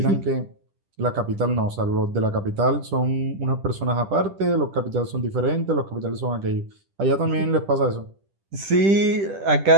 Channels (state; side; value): late; left; 10 ms